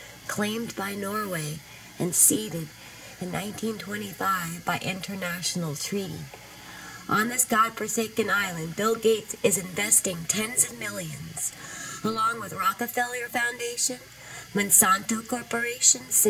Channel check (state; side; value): identical; both; correlation 1.00